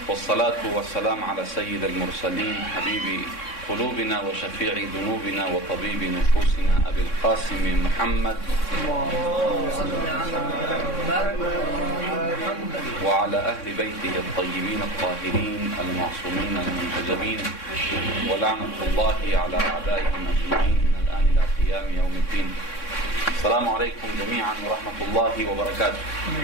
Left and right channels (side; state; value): right; late; 3.6 ms